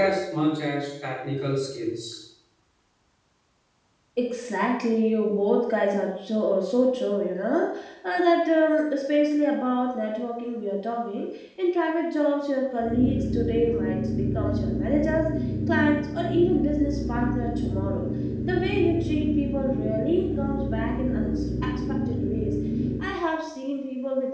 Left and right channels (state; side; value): identical; both; correlation 1.00